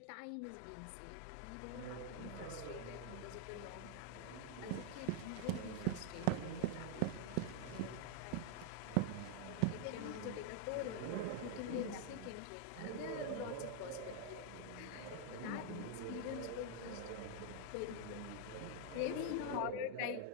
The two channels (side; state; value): both; different; correlation 0.00